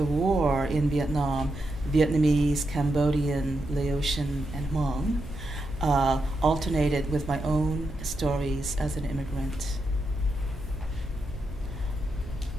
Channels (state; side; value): noise; right; hum, 14 dB below the sound